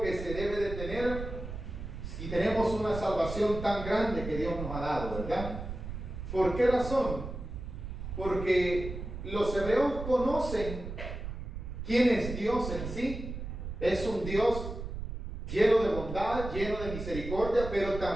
que se debe de tener si tenemos una salvación tan grande que Dios nos ha dado, ¿verdad? ¿Por qué razón? Porque los hebreos conocen quién es Dios en sí. Es un Dios lleno de bondad, lleno de misericordia, pero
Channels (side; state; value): right; noise; rumble, 7 dB below the sound